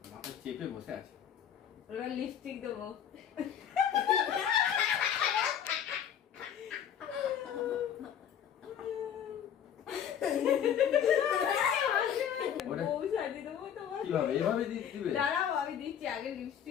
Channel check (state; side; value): quieter; right; 9.0 dB